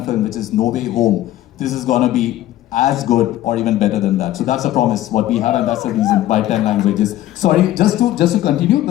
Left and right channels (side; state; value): right; quieter; 14.1 dB